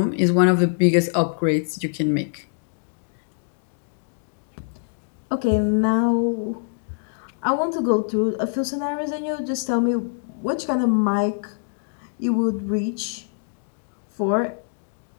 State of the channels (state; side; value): silent; right; digital silence